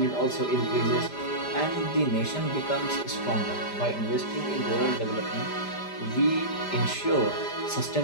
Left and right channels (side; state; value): right; late; 5.0 ms